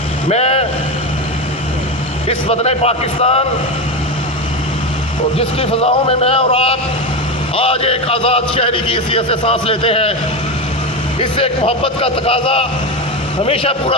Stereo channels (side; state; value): both; normal; correlation 0.16